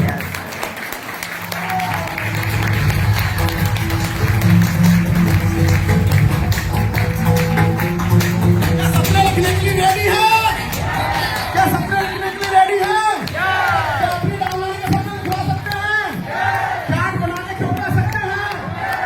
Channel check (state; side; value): identical; both; correlation 1.00